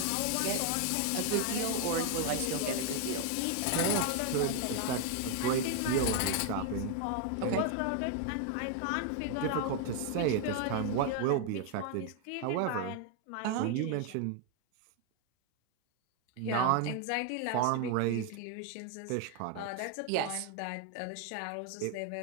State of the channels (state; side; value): different; both; correlation 0.01